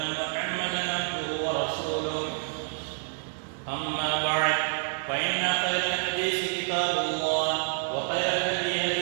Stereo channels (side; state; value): left; silent; digital silence